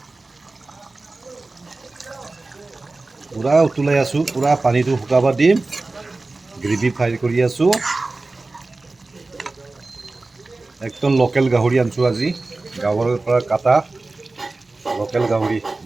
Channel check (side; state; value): left; quieter; 3.3 dB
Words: পূৰা উতলাই আছোঁ পূৰা পানীটো শুকাব দিম গ্ৰেভি ফ্ৰাই কৰি আছোঁ একদম লোকেল গাহৰি আনিছোঁ আজি গাঁৱৰ পৰা কাটা লোকেল গাহৰি